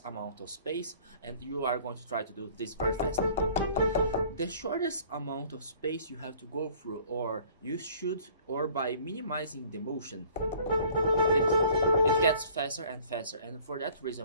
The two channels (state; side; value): inverted; both; correlation -0.53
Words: amount of space and you are going to try to do this very fast. The shortest amount of space you have to go through, or by minimizing the motion, it gets faster and faster. And for that